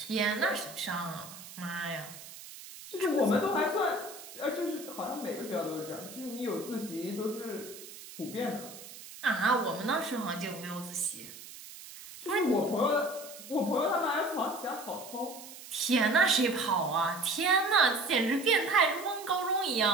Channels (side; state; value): right; noise; hiss, 15 dB below the sound